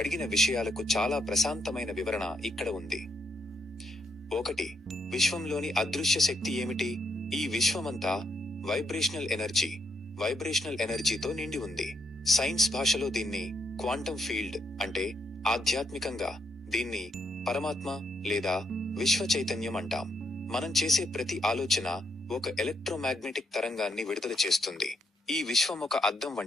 విషయాలకు చాలా ప్రశాంతమైన వివరణ ఇక్కడ ఉంది. 1. విశ్వంలోని అదృశ్య శక్తి ఏమిటి? ఈ విశ్వమంతా వైబ్రేషనల్ ఎనర్జీతో నిండి ఉంది. సైన్స్ భాషలో దీన్ని క్వాంటం ఫీల్డ్ అంటే ఆధ్యాత్మికంగా దీన్ని పరమాత్మ లేదా విశ్వ చైతన్యం అంటాం. మనం చేసే ప్రతి ఆలోచన ఒక ఎలక్ట్రోమాగ్నెటిక్ తరంగాన్ని విడుదల చేస్తుంది. ఈ విశ్వం ఒక అద్దం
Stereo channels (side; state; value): both; normal; correlation 0.77